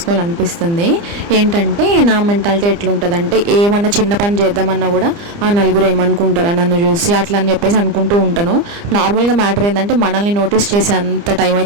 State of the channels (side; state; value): left; late; 29 ms